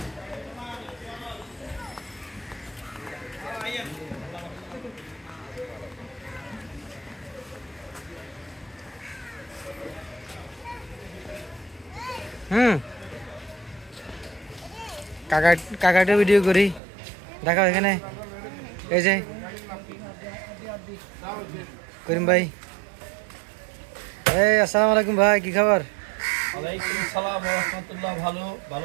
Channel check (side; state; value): left; drops out; at 16.8 s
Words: কাকাটা ভিডিও করি দেখাও এখানে এই যে করিম ভাই এই আসসালামু আলাইকুম ভাই কি খবর ওয়ালাইকুম আসসালাম ওয়া রাহমাতুল্লাহ